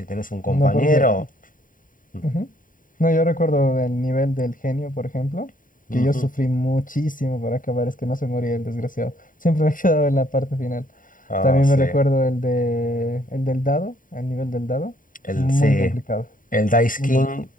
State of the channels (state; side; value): late; right; 0.39 ms